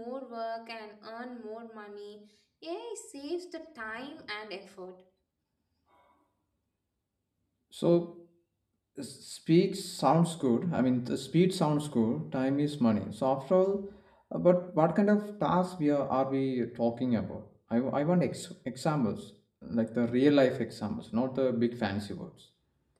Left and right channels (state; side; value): identical; both; correlation 1.00